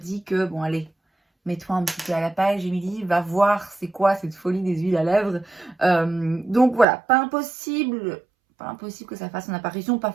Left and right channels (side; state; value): left; drops out; at 6.9 s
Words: que, bon allez, mets-toi un petit peu à la page, Émilie, va voir c'est quoi cette folie des huiles à lèvres. Donc voilà, pas impossible que ça fasse une apparition, pas